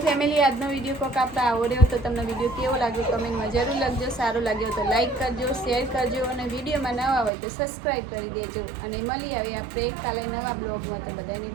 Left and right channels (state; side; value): drops out; left; at 7.3 s